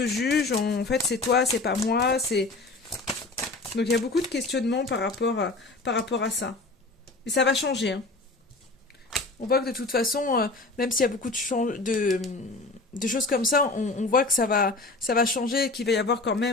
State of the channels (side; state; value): right; quieter; 3.3 dB